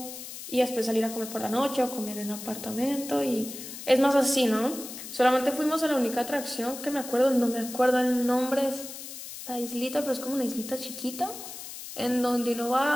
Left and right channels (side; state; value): left; noise; hiss, 11 dB below the sound